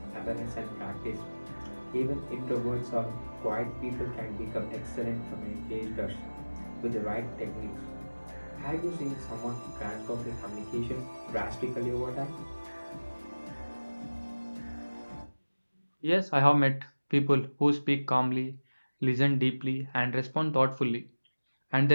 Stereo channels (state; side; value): inverted; both; correlation -1.00